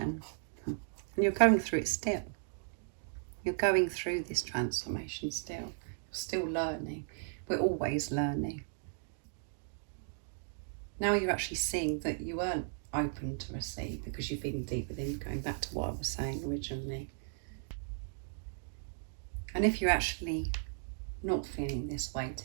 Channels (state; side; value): silent; left; digital silence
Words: and you're going through it still. You're going through this transformation still. You're still learning. We're always learning. Now you're actually seeing that you weren't open to receive because you've been deep within, going back to what I was saying originally. And if you're actually not feeling this way